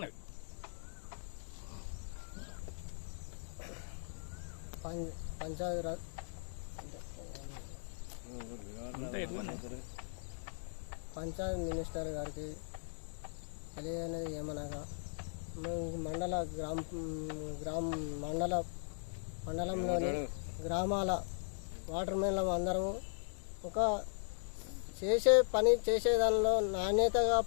పంచాయత్ మినిస్టర్ గారికి తెలియనిది ఏమనగా, మేము మండలంలోని గ్రామాల వాటర్ మెన్ల అందరము ఒక చేసేదానిలో నాణ్యతగా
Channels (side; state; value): right; silent; digital silence